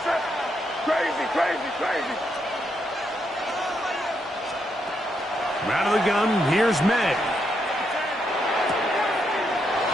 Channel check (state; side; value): normal; both; correlation 0.79